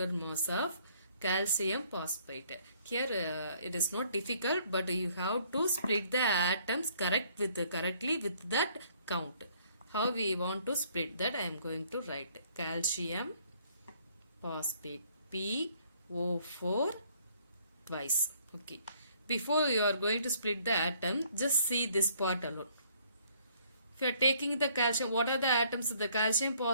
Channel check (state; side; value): inverted; both; correlation -0.63